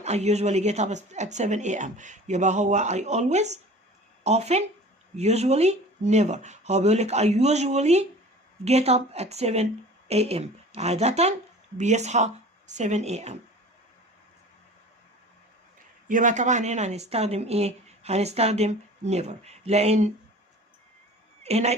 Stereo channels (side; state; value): both; normal; correlation 0.42